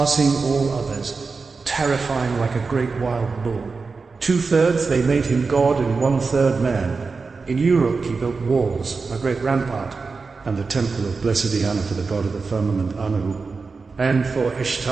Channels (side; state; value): left; quieter; 4.5 dB